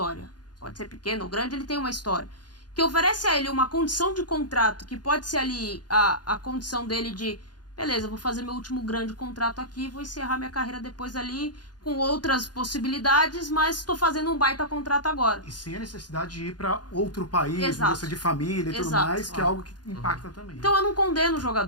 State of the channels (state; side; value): late; right; 0.70 ms